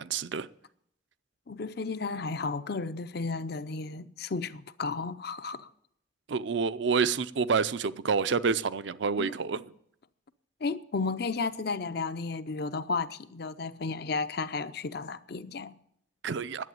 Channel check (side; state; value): both; normal; correlation -0.06